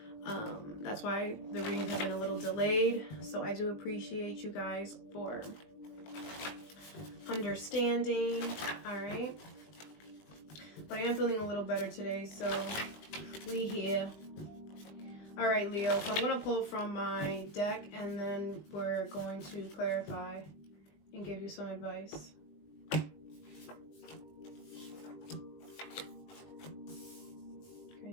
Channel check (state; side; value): late; right; 20 ms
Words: that's why the reading has been a little delayed. So I do appreciate you guys for understanding. All right, but I am feeling a little better today, so we here. All right, Leo, so I'm gonna pull from my deck and then we're going to clarify and give you some advice. Okay,